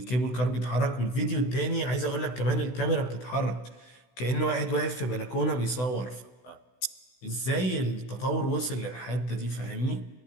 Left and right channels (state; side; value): late; right; 16 ms